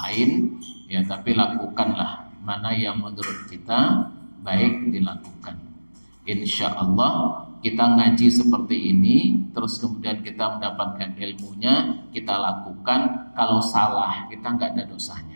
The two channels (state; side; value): inverted; both; correlation -1.00